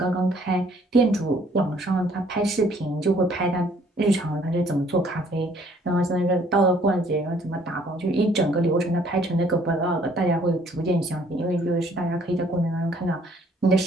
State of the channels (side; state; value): both; normal; correlation 0.61